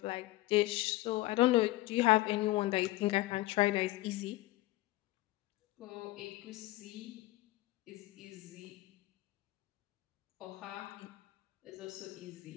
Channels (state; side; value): quieter; right; 18.4 dB